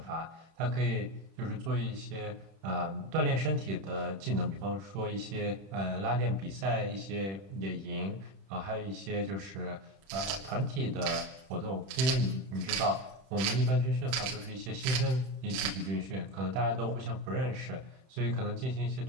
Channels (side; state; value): left; late; 31 ms